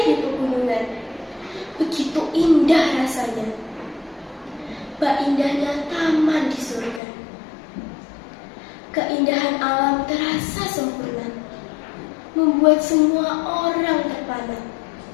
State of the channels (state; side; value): drops out; right; at 7.0 s